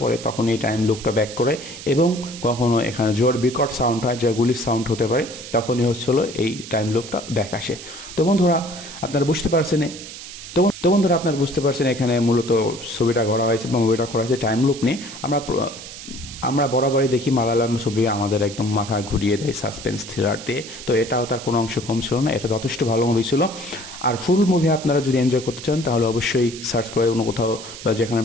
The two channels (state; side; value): noise; right; hiss, 13 dB below the sound